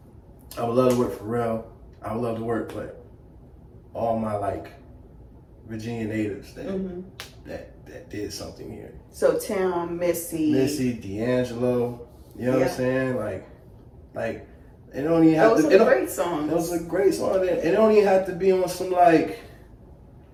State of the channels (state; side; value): identical; both; correlation 1.00